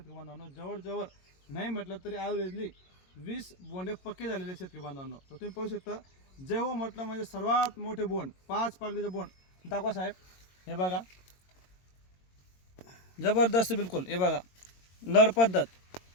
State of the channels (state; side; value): late; right; 22 ms